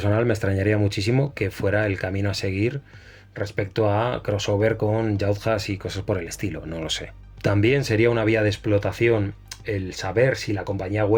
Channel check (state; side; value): identical; both; correlation 1.00